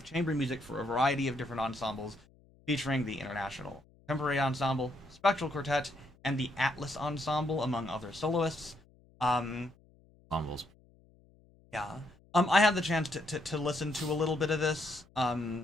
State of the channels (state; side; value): noise; left; hum, 29 dB below the sound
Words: chamber music for a variety of different ensembles, featuring the International Contemporary Ensemble, Spectral Quartet, and the Atlas Ensemble, among other soloists. Ensembles. Yeah. I had the chance to listen to a little bit of this.